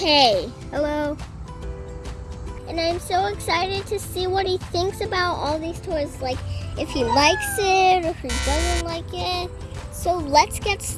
Hello. And I'm so excited to see what he thinks about all these toys. Like if he likes it or if he doesn't like it. So let's get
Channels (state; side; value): identical; both; correlation 1.00